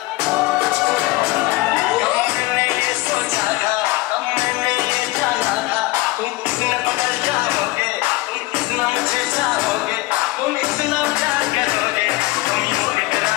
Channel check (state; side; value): quieter; right; 20.3 dB